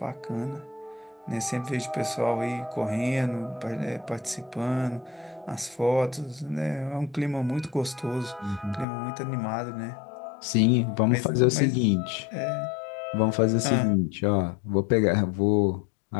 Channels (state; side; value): drops out; right; at 8.8 s